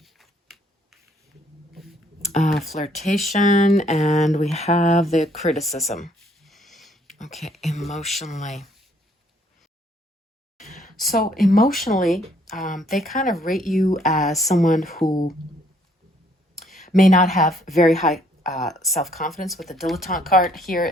Flirtation, and we have the criticism. Okay, emotionally. So emotionally, they kind of rate you as someone who may not have very high self-confidence. With the dilettante card here,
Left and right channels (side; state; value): both; normal; correlation 0.65